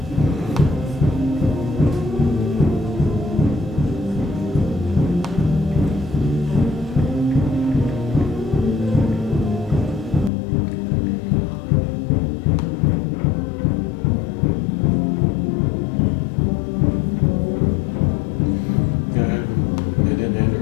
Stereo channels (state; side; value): drops out; right; at 10.3 s